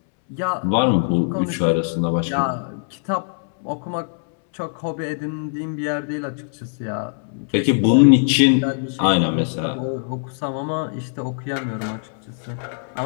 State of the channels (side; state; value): right; silent; 64 dB below the other